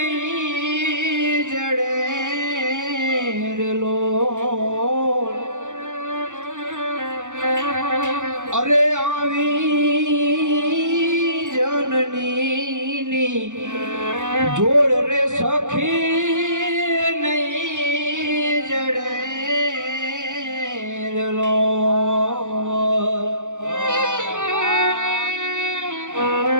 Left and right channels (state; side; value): late; left; 0.86 ms